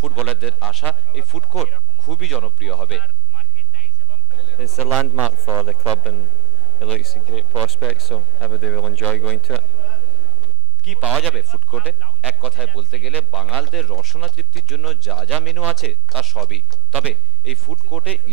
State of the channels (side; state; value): both; normal; correlation 0.61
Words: আশা এই ফুড কোর্ট খুবই জনপ্রিয় হবে। It's a landmark for the club and it looks a great prospect, so everybody will enjoy going to it. কি পাওয়া যাবে ফুড কোর্টে? এক কথায় বলতে গেলে বাঙালদের রসনা তৃপ্তির জন্য যা যা মেনু আছে তা সবই। তবে এই ফুড কোর্টে